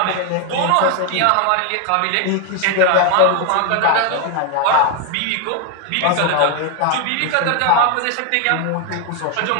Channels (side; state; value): both; different; correlation 0.01